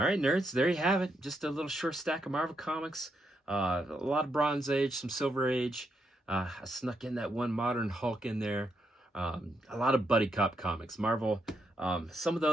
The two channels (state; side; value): normal; both; correlation 0.80